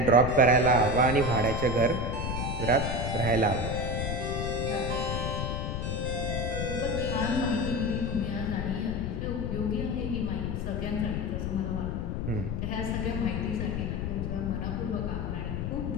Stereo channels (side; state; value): left; noise; rumble, 1 dB below the sound